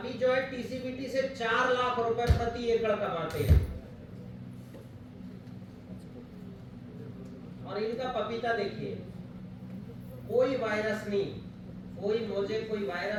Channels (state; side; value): identical; both; correlation 1.00